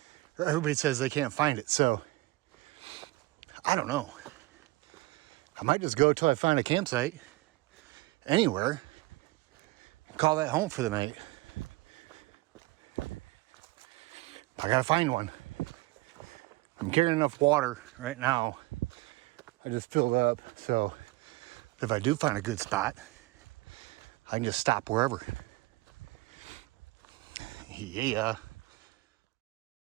they can't find it. So I don't know. I might just go till I find a campsite anywhere. Call that home for the night. I gotta find one. I'm carrying enough water right now. I just filled up, so if I do find a good spot, I can just stop wherever. Yeah.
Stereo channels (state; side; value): quieter; left; 20.7 dB